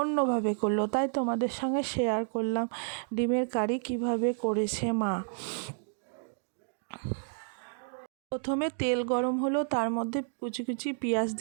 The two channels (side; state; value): left; silent; digital silence